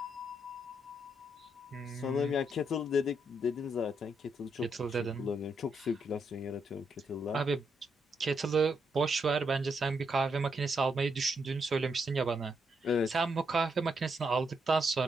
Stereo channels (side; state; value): both; normal; correlation 0.79